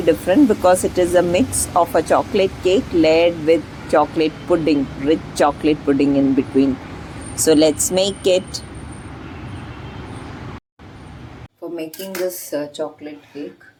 because it is a mix of a chocolate cake layered with chocolate pudding, rich chocolate pudding in between. So let's make it. For making this chocolate cake,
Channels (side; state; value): both; identical; correlation 1.00